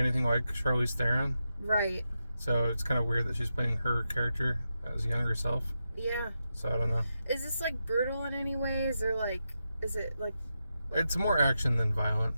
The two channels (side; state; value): both; inverted; correlation -0.87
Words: like Charlize Theron. Right. So it's kind of weird that she's playing her character as younger self. Yeah. So I don't know. Is this like brutal in any ways, or like, is it like? It's more action than violent.